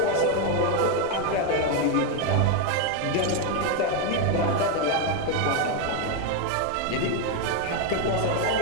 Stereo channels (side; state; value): both; different; correlation 0.02